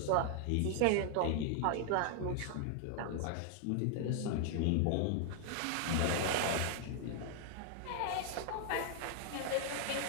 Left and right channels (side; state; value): both; different; correlation 0.00